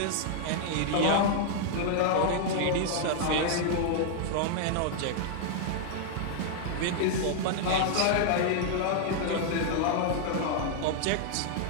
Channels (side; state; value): both; different; correlation 0.00